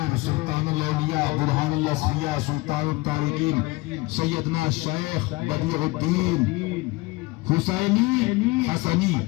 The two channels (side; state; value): right; quieter; 22.8 dB